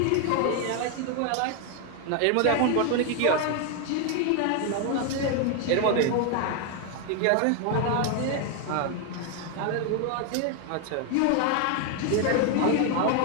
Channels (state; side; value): different; both; correlation 0.01